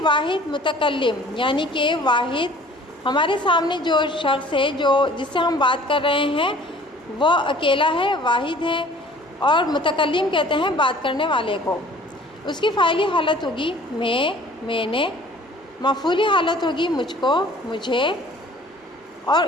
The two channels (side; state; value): both; normal; correlation 0.50